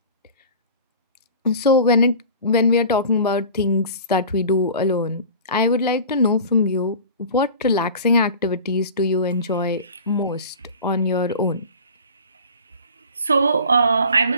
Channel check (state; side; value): inverted; both; correlation -0.39